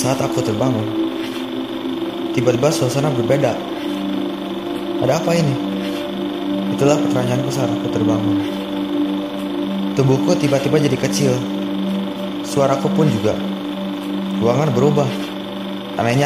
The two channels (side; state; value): both; identical; correlation 1.00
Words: aku terbangun, tiba-tiba suasana berbeda. Ada apa ini? Itulah pertanyaanku saat aku terbangun. Tubuhku tiba-tiba jadi kecil. Suaraku pun juga. Ruangan berubah.